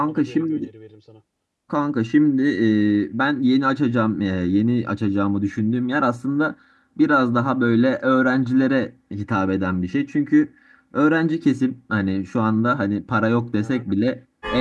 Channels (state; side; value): identical; both; correlation 1.00